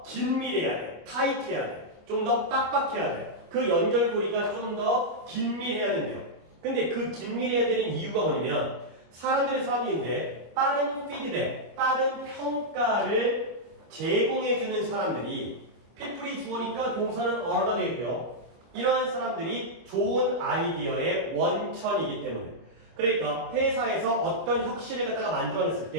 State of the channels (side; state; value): left; late; 25 ms